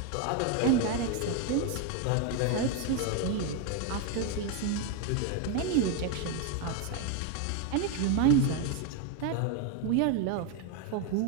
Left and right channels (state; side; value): different; both; correlation 0.02